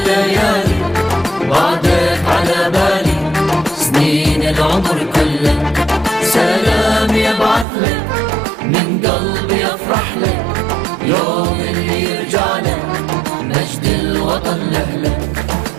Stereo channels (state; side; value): drops out; left; at 7.7 s